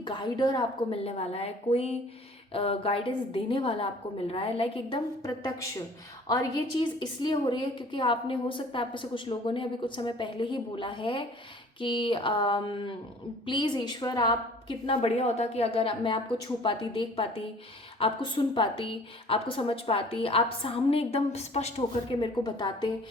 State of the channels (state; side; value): normal; both; correlation 0.50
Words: गाइडर आपको मिलने वाला है, कोई गाइडेंस देने वाला आपको मिल रहा है, लाइक एकदम प्रत्यक्ष। और ये चीज़ इसलिए हो रही है क्योंकि आपने, हो सकता है आप में से कुछ लोगों ने अभी कुछ समय पहले ही बोला है कि प्लीज़ ईश्वर आप कितना बढ़िया होता कि अगर मैं आपको छू पाती, देख पाती, आपको सुन पाती, आपको समझ पाती, आप सामने एकदम स्पष्ट होकर के मेरे को बताते,